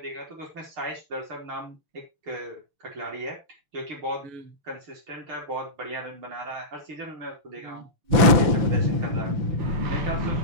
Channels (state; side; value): late; left; 6.0 ms